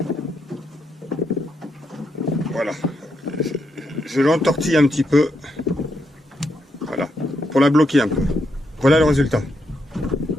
voilà, je l'entortille un petit peu, voilà, pour la bloquer un peu. Voilà le résultat.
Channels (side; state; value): both; normal; correlation 0.80